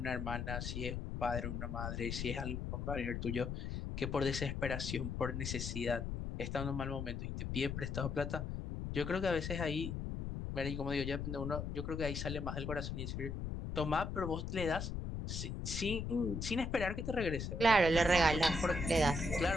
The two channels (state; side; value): noise; left; rumble, 4 dB below the sound